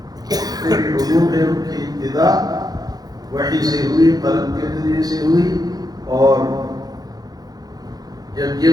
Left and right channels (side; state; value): left; late; 0.19 ms